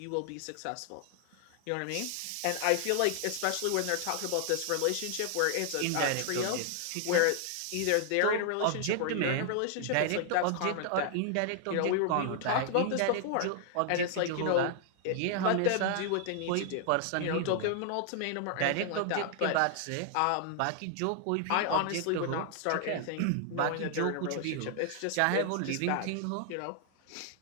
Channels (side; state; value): both; different; correlation 0.00